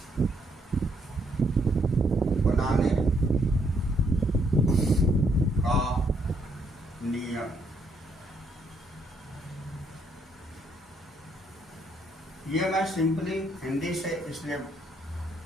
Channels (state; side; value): normal; both; correlation 0.72